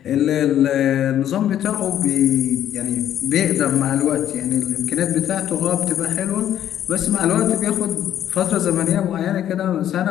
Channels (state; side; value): quieter; right; 10.9 dB